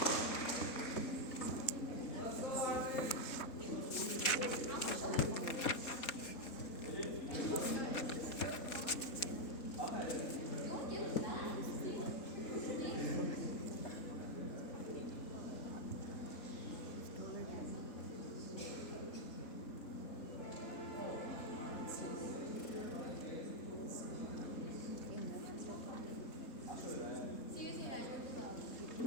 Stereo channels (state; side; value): late; right; 3.7 ms